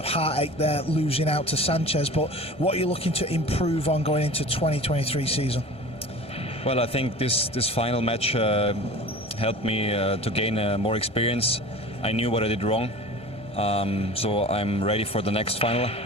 heartache there, losing out to Sanchez, but what are you looking to improve on going into 2023 season? Well, I think this final match helped me to gain more experience. I knew what I did wrong, so I'm ready for the next final.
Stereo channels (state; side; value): late; left; 1.3 ms